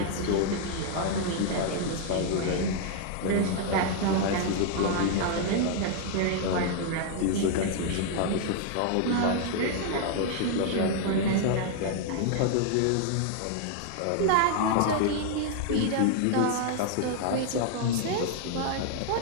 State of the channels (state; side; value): different; both; correlation 0.00